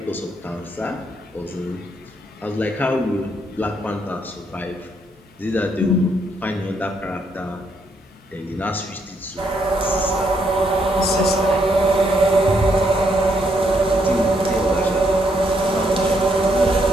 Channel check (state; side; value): normal; both; correlation 0.75